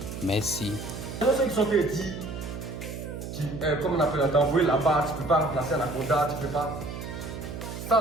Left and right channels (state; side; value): noise; right; hum, 8 dB below the sound